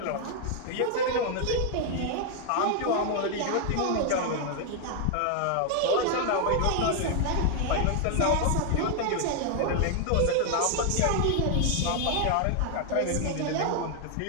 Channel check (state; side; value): different; both; correlation 0.00